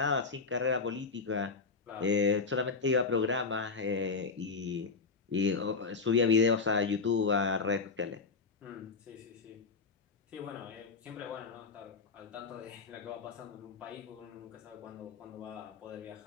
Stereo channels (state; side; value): quieter; right; 4.6 dB